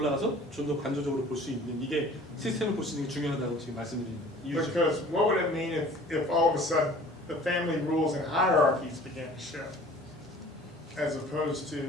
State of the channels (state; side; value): normal; both; correlation 0.48